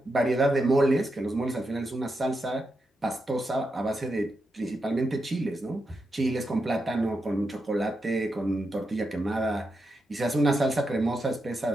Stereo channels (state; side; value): normal; both; correlation 0.86